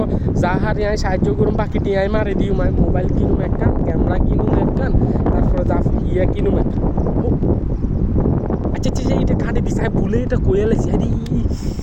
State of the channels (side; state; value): both; identical; correlation 1.00